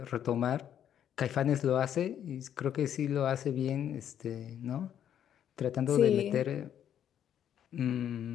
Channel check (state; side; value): quieter; right; 9.8 dB